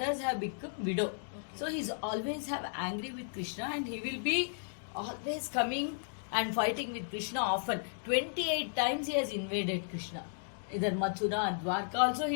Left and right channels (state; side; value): silent; right; digital silence